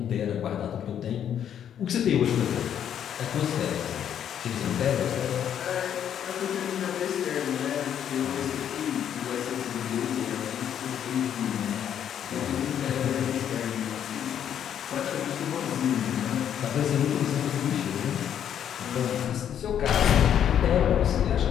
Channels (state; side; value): quieter; right; 9.4 dB